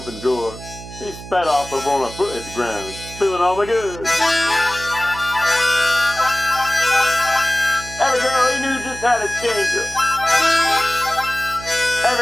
the door. He sped off before my foot hit the ground, spilling all my goods. Every girl he knew just had a changer.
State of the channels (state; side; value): noise; right; hum, 14 dB below the sound